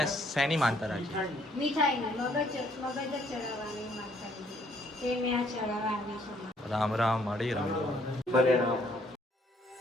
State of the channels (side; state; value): both; normal; correlation 0.65